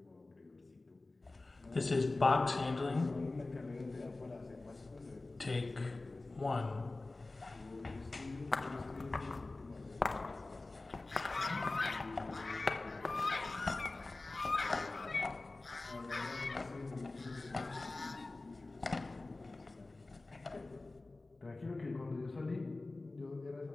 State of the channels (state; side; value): quieter; right; 3.2 dB